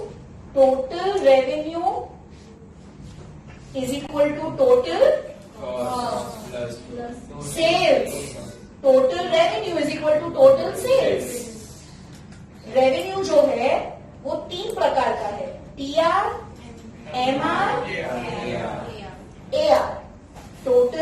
total revenue is equal to total sales. Total revenue is equal to total sales. Revenue जो है वो 3 प्रकार का है. TR, MR, AR.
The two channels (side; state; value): both; identical; correlation 1.00